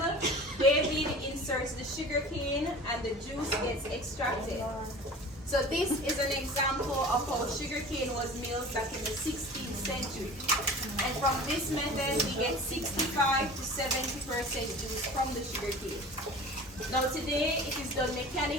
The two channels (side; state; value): both; normal; correlation 0.39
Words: David inserts the sugarcane and the juice gets extracted. So this is an example of how sugarcane was milled back in the 16th century. And from this method, we get 65 to 70% juice from the sugarcane. Now today, it is done